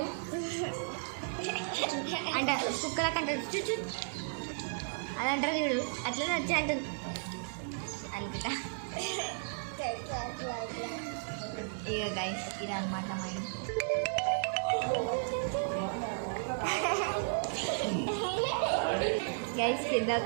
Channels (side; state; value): left; silent; digital silence